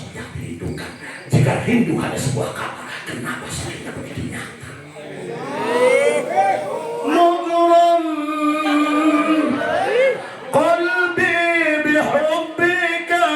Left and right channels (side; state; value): both; identical; correlation 1.00